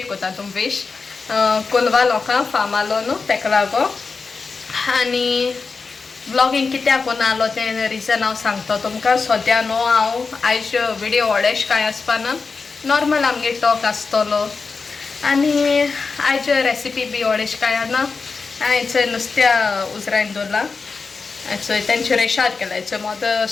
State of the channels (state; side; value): quieter; right; 4.6 dB